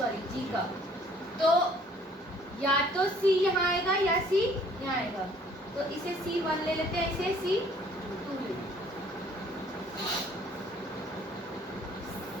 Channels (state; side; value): normal; both; correlation 0.58